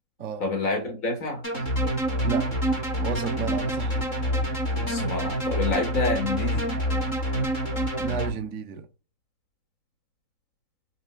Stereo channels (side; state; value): right; late; 3.7 ms